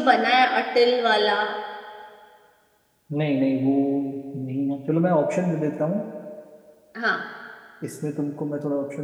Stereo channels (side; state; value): both; identical; correlation 1.00